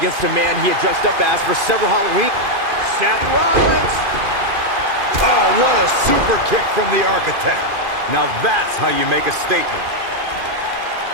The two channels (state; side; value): late; left; 2.5 ms